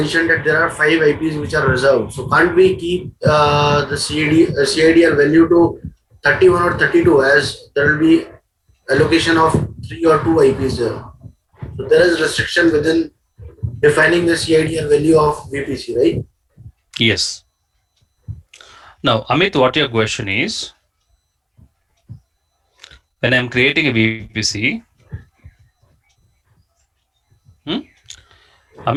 that there are 5 IPs which are reserved. So can't we keep the CIDR value to 31 or 32 as there will be allocation of 3 or 2 IPs there. So there is restriction within defining the CIDR value of VPC, right? Yes. Now, Amit, what your question is, when I'm creating a VPC,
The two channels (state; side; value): identical; both; correlation 1.00